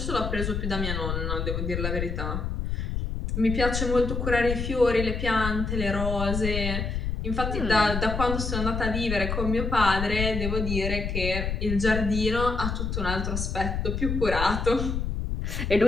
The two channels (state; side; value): noise; left; rumble, 2 dB below the sound